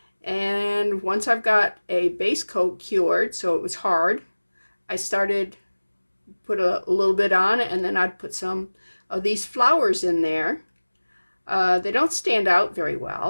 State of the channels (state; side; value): inverted; both; correlation -1.00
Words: And once I've got a base coat cured, so it was hard, I started put a little bit on, and then I'd put some of these flowers in there. They don't stand out very